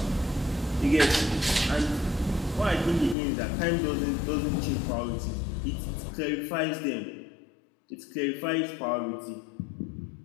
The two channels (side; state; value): right; drops out; at 3.2 s